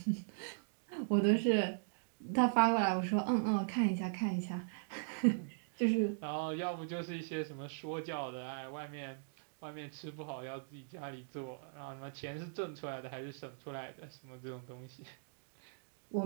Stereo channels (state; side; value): silent; left; digital silence